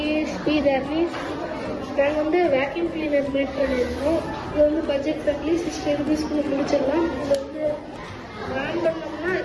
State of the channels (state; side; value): identical; both; correlation 1.00